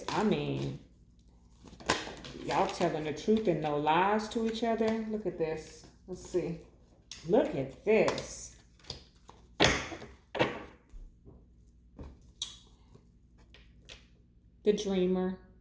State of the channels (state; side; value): identical; both; correlation 1.00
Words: mean, y'all telling the truth and no lies to each other. Look at this. Let's see. Look at this. The dreamer.